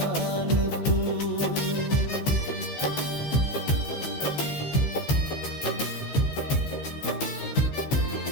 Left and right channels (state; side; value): late; right; 14 ms